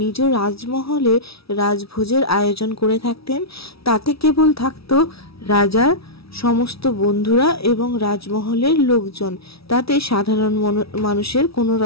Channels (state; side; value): late; right; 0.76 ms